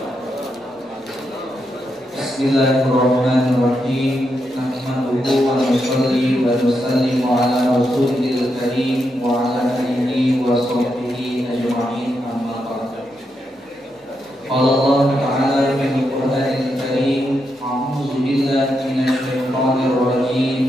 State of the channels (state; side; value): normal; both; correlation 0.83